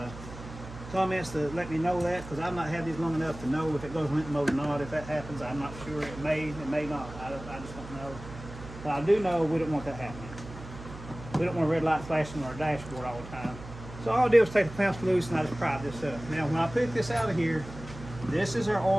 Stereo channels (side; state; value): right; noise; hum, 13 dB below the sound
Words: comments to let me know that, because I've not had these long enough to know if it goes limp mode or not. If that happens, I'm not sure. It may not. I just don't know. But I do know we don't want that happening. We don't want a red light flashing on our dashboard all the time. So all I did was take the clamps loose and I just pried this up. Now when I pick this out of here, this is our